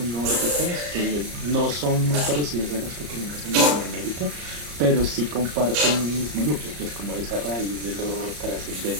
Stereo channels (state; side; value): late; left; 34 ms